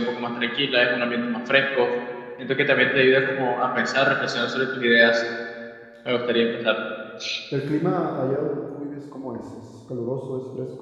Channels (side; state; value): both; identical; correlation 1.00